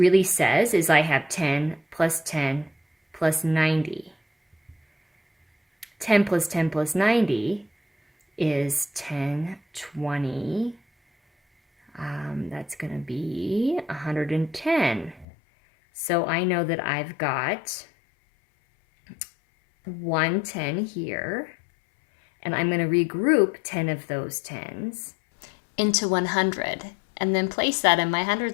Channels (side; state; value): right; drops out; at 15.2 s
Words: says is I have 10 plus 90. 10 plus 10 plus 90 is 10, 20. That's going to be 110. So I know that I've got 110 here, and I'm going to regroup 10 of those 10s into 100 and then place that in my